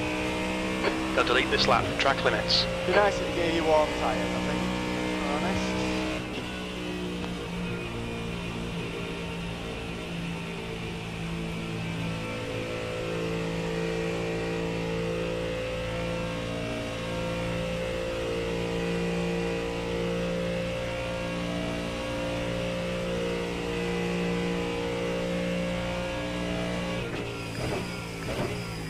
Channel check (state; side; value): identical; both; correlation 1.00